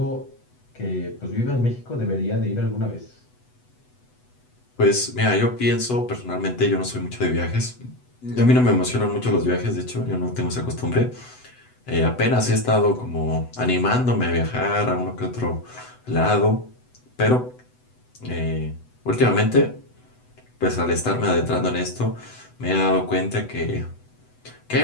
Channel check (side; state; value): right; late; 8.0 ms